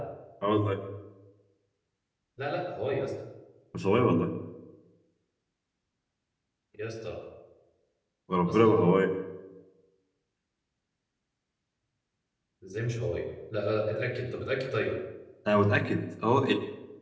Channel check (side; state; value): both; identical; correlation 1.00